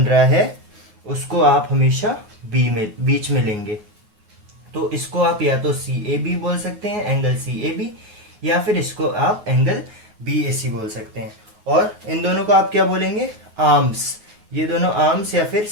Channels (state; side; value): late; left; 9.6 ms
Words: रहा है उसको आप हमेशा बी में बीच में लेंगे। तो इसको आप या तो सी ए बी बोल सकते हैं, एंगल सी ए बी, या फिर इसको आप एंगल बी ए सी बोल सकते हैं। और इन दोनों को आप क्या बोलेंगे? आर्म्स। ये दोनों आर्म्स या फिर